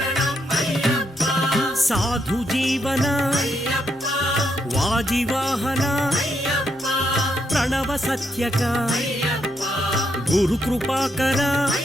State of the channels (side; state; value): left; noise; hum, 29 dB below the sound